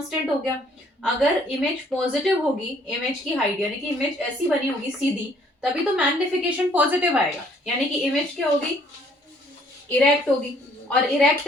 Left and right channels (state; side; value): normal; both; correlation 0.62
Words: हो गया। अगर इमेज पॉजिटिव होगी, इमेज की हाइट यानी कि इमेज ऐसी बनी होगी सीधी, तभी तो मैग्निफिकेशन पॉजिटिव आएगा, यानी कि इमेज क्या होगी? इरेक्ट होगी, और इरेक्ट